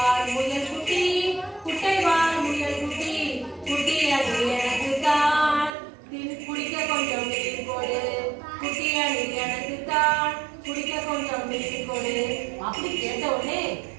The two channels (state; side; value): drops out; left; at 5.8 s